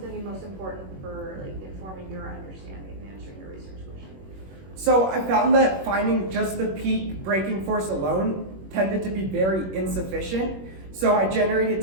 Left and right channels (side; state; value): left; late; 21 ms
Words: to be most important for informing your understanding and answering your research question? So I found that finding just the peak breaking force alone tended to be very insufficient. So I generated